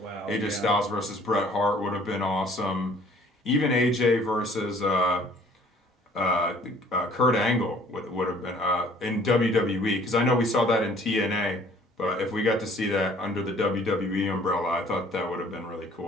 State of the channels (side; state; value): both; normal; correlation 0.55